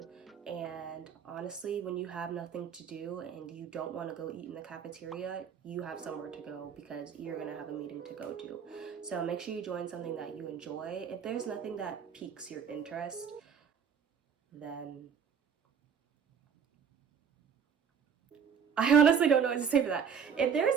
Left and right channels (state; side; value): quieter; left; 7.2 dB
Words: And honestly, when you have nothing to do and you don't want to go eat in the cafeteria, you have somewhere to go because you're gonna have a meeting to go to. So make sure you join something that you enjoy. If there's nothing that piques your interest, then I honestly don't know what to say for that. If